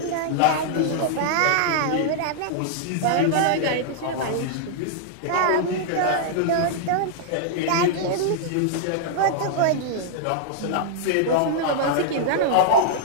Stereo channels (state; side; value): different; both; correlation -0.01